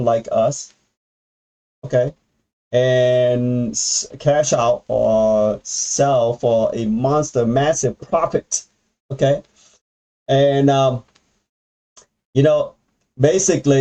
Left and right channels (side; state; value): both; identical; correlation 1.00